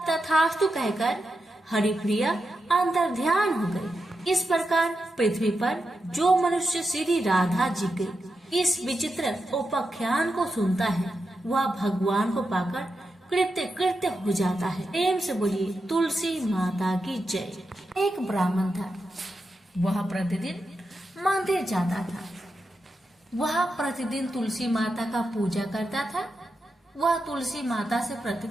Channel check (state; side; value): normal; both; correlation 0.88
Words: तथास्तु कहकर हरिप्रिया अंतर्ध्यान हो गई। इस प्रकार पृथ्वी पर जो मनुष्य श्री राधा जी के इस विचित्र उपाख्यान को सुनता है वह भगवान को पाकर कृत्य कृत्य हो जाता है। प्रेम से बोलिए तुलसी माता की जय। एक ब्राह्मण था, वह प्रतिदिन मंदिर जाता था। वह प्रतिदिन तुलसी माता का पूजा करता था। वह तुलसी माता से